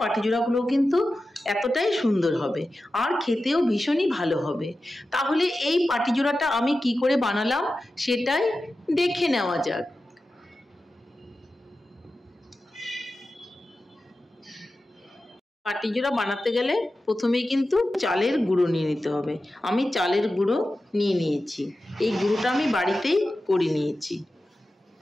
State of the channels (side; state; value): both; normal; correlation 0.93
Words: পাটিচূড়াগুলো কিন্তু এতটাই সুন্দর হবে আর খেতেও ভীষণই ভালো হবে। তাহলে এই পাটিচূড়াটা আমি কি করে বানালাম সেটাই দেখে নেওয়া যাক। পাটিচূড়া বানাতে গেলে প্রথমেই কিন্তু চালের গুঁড়ো নিয়ে নিতে হবে। আমি চালের গুঁড়ো নিয়ে নিয়েছি। এই গুঁড়োটা আমি বাড়িতেই করে নিয়েছি।